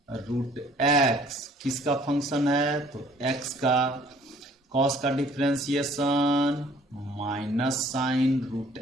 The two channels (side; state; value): both; normal; correlation 0.57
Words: रूट एक्स किसका फंक्शन है? तो एक्स का। कॉस का differentiation minus sine root